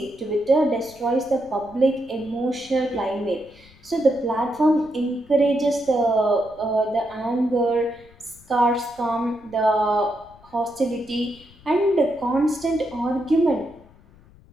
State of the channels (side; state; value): left; noise; rumble, 26 dB below the sound